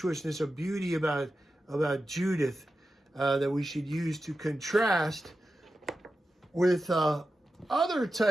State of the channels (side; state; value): both; normal; correlation 0.91